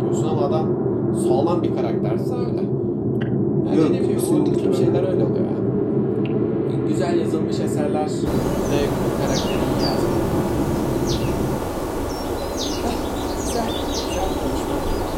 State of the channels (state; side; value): identical; both; correlation 1.00